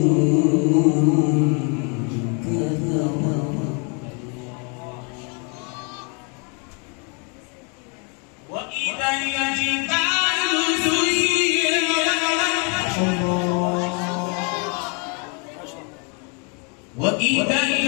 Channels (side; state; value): right; quieter; 35.6 dB